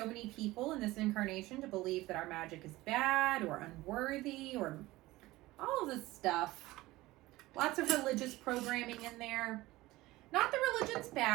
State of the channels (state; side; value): quieter; left; 18.7 dB